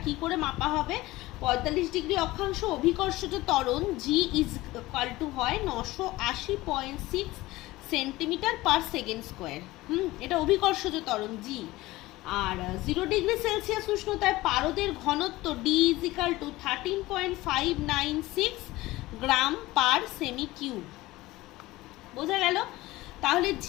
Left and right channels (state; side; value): quieter; right; 18.7 dB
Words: কি করে মাপা হবে? ৪৫ ডিগ্রি অক্ষাংশ অভিকর্ষজ ত্বরণ জি ইজ ইকুয়াল টু হয় ৯৮০.৬ সেন্টিমিটার পার সেকেন্ড স্কোয়ার। এটা অভিকর্ষজ ত্বরণ জি। আর 0 ডিগ্রি সেলসিয়াস উষ্ণতায় পারদের ঘনত্ব D is equal to 13.596 gram per semi cube. বোঝা গেল? তাহলে